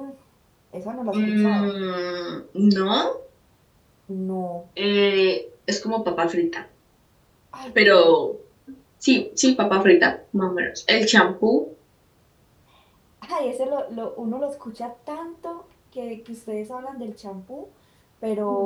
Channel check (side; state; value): both; identical; correlation 1.00